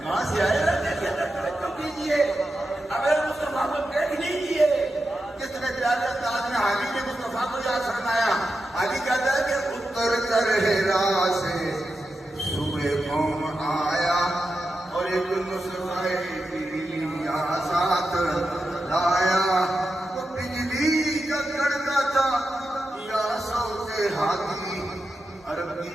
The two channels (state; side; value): normal; both; correlation 0.89